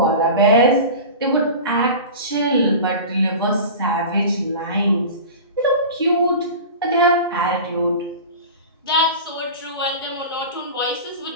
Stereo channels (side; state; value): both; inverted; correlation -0.33